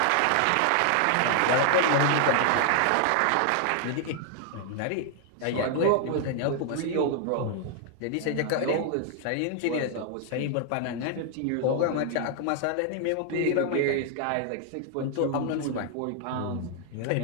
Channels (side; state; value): both; different; correlation 0.00